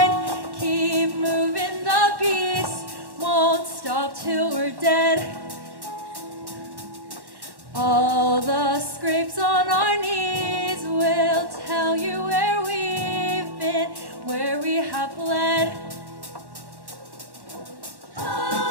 Keep moving, the beast won't stop till we're dead. All the scrapes on our knees will tell you where we've been, where we have bled.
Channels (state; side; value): late; left; 1.1 ms